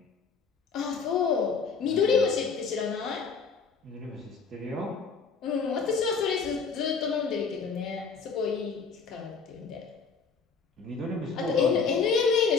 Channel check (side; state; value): right; quieter; 5.3 dB